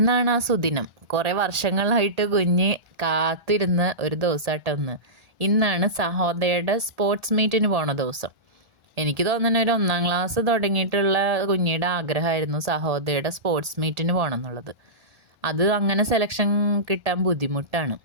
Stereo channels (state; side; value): late; left; 1.4 ms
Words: ആ സുദിനം. കുറേ വർഷങ്ങളായിട്ട് കുഞ്ഞ് കാത്തിരുന്ന ഒരു ദിവസമായിട്ട് ഇന്നാണ് സഹോദയയുടെ സ്പോർട്സ് മീറ്റിന് പോണ ദിവസം. എനിക്ക് തോന്നുന്നു ഒരു 1-ാം ക്ലാസ് തുടങ്ങിയിട്ടുള്ള കുഞ്ഞിയുടെ ആഗ്രഹമായിരുന്നു സഹോദയയുടെ സ്പോർട്സ് മീറ്റിന് പോകണം എന്നുള്ളത്. അത് അങ്ങനെ സെലക്ഷൻ കിട്ടാൻ ബുദ്ധിമുട്ടാണ്.